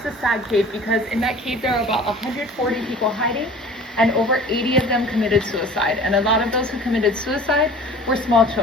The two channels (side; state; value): both; normal; correlation 0.44